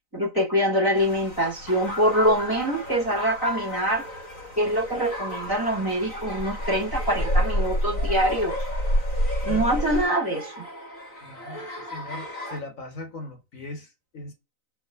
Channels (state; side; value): late; right; 3.9 ms